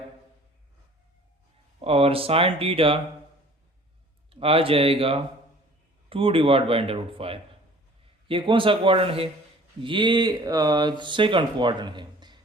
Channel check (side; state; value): both; normal; correlation 0.49